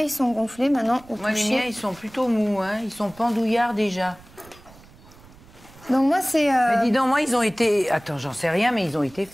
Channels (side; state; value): right; noise; rumble, 23 dB below the sound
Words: ils sont gonflés maintenant au Moi, les toucher. miens, ils sont plutôt mous, hein. Ils sont pendouillards déjà. Donc moi c'est... Mais dis donc, moi, ils ont été... Attends, j'en sais rien, mais ils ont été